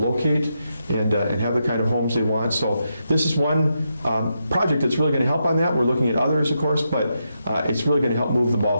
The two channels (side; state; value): both; inverted; correlation -0.84